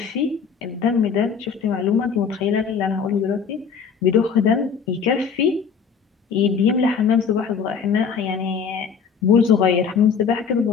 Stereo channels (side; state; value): right; quieter; 6.3 dB